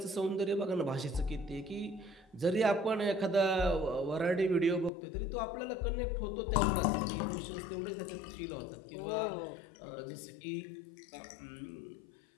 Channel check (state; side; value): drops out; right; at 4.9 s